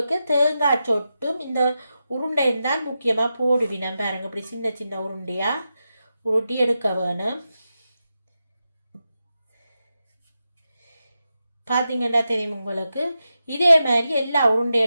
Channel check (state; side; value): inverted; both; correlation -0.89